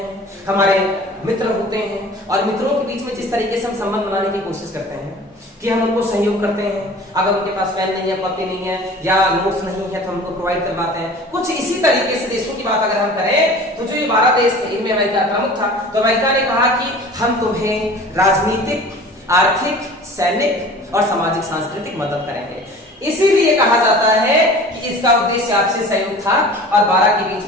हमारे मित्र होते हैं, और मित्रों के बीच में जिस तरीके से हम संबंध बनाने की कोशिश करते हैं कि हम उनको सहयोग करते हैं। अगर उनके पास पेन नहीं है, कॉपी नहीं है, या नोट्स नहीं है, तो हम उनको प्रोवाइड करवाते हैं। कुछ इसी तरीके से देशों की बात अगर हम करें तो जो ये 12 देश थे, इनमें अमेरिका प्रमुख था। तो अमेरिका ने कहा कि हम तुम्हें राजनीतिक, आर्थिक, सैनिक और सामाजिक सांस्कृतिक मदद करेंगे। इसीलिए कहा जाता है कि इसका उद्देश्य आपसी सहयोग था, और 12 के बीच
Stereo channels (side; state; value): both; normal; correlation 0.42